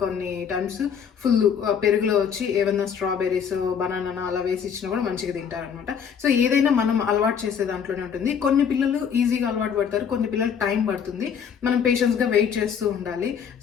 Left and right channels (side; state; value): right; quieter; 7.4 dB